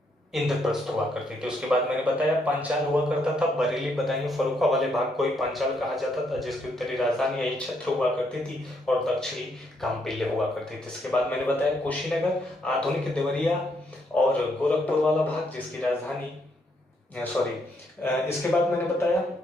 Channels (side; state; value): both; normal; correlation 0.74